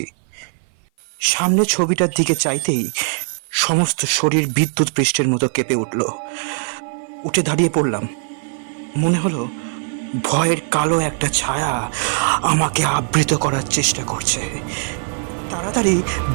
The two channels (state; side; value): silent; left; 56 dB below the other